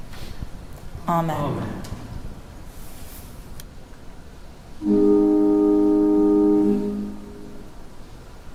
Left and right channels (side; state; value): both; identical; correlation 1.00